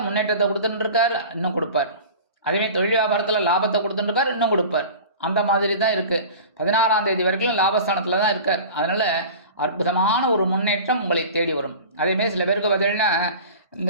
முன்னேற்றத்தை கொடுத்துட்டு இருக்கார், இன்னும் கொடுப்பார். அதேமாதிரி தொழில் வியாபாரத்தில் லாபத்தை கொடுத்துட்டு இருக்கார், இன்னும் கொடுப்பார். அந்த மாதிரி தான் இருக்குது. 16ஆம் தேதி வரைக்கும் லாபஸ்தானத்தில் தான் இருக்கார். அதனால் அற்புதமான ஒரு முன்னேற்றம் உங்களை தேடி வரும். அதேமாரி சில பேருக்கு பார்த்தீங்கன்னா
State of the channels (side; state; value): both; inverted; correlation -0.38